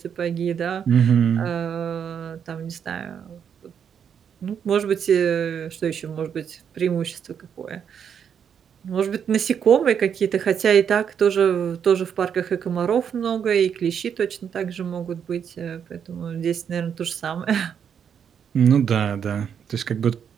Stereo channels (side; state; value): left; quieter; 7.8 dB